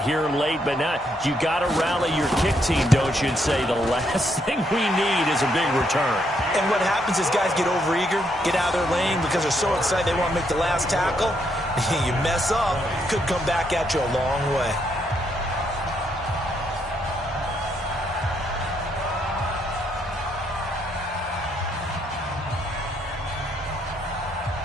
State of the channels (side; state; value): both; normal; correlation 0.75